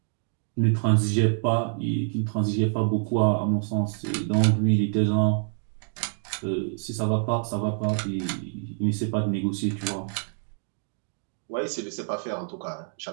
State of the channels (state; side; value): silent; left; 60 dB below the other